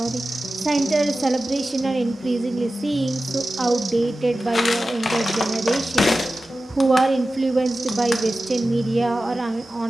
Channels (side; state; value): both; normal; correlation 0.94